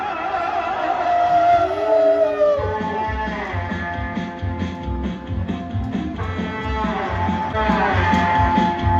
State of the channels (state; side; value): identical; both; correlation 1.00